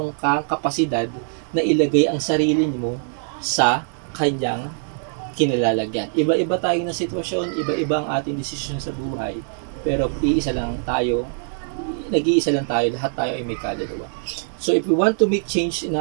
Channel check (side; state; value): left; silent; digital silence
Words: kang kapasidad na ilagay ang sarili mo sa kanyang kinalalagyan. Iba-iba tayo ng sitwasyon, iba-iba ang ating desisyon sa buhay, pero nag-iisa lang tayo, lahat tayo ay may kaluluwa. So if we want to make change in